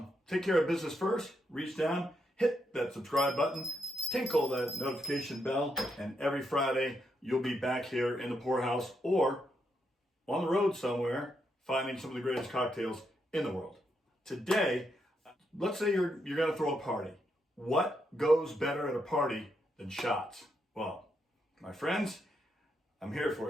Take care of business first. Reach down, hit that subscribe button, tinkle that notification bell, and every Friday you'll be back here in the Poorhouse or on the road somewhere finding some of the greatest cocktails in the world. Today, let's say you're going to throw a party. What goes better at a party than shots? Well, my friends, I'm here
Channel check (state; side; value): normal; both; correlation 0.80